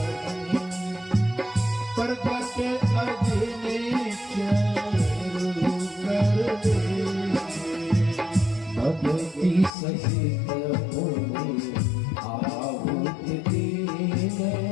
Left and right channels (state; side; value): drops out; right; at 9.7 s